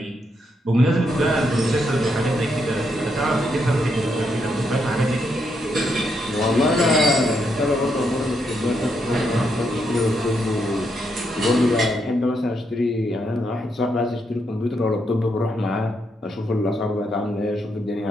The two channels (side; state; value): both; normal; correlation 0.79